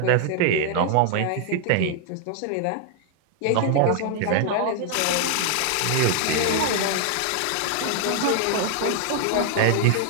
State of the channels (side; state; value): both; different; correlation 0.00